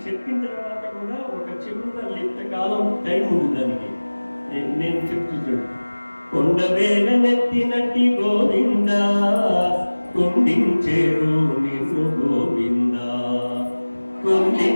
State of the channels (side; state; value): both; inverted; correlation -1.00